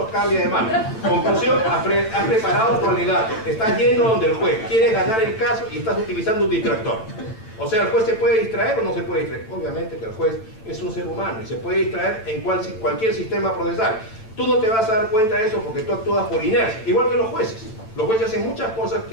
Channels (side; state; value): right; late; 9.0 ms